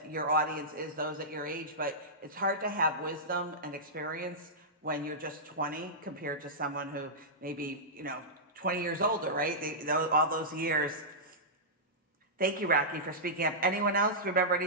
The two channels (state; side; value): normal; both; correlation -0.14